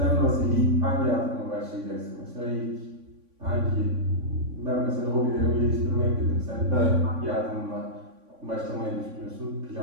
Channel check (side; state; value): left; late; 3.6 ms